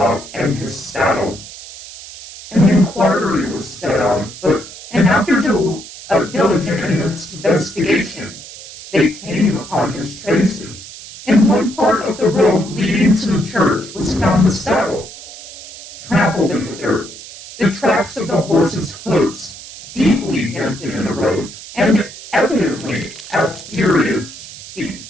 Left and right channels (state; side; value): noise; right; hiss, 15 dB below the sound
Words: and his saddle. An inquiry was set on foot, and after a diligent investigation, they came upon his traces. In one part of the road leading to the church was found the saddle, trampled in the dirt, the tracks of the horse's hoofs deeply dented in the road, and evidently at furious speed,